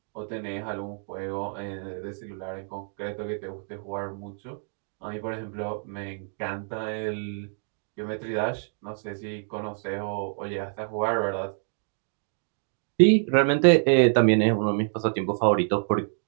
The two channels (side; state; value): left; silent; digital silence